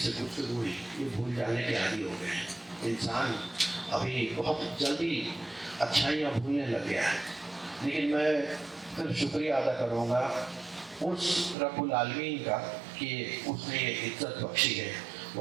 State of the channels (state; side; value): drops out; left; at 11.6 s